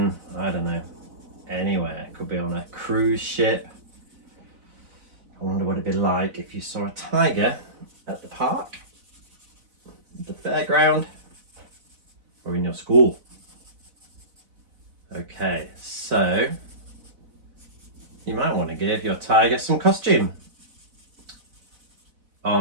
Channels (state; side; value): late; left; 4.0 ms